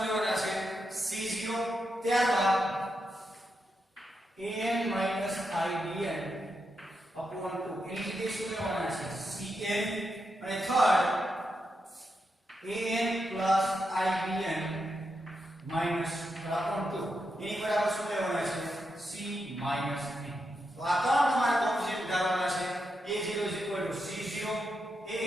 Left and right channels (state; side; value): normal; both; correlation 0.85